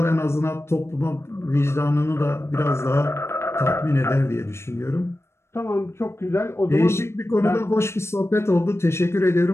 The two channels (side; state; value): right; late; 0.13 ms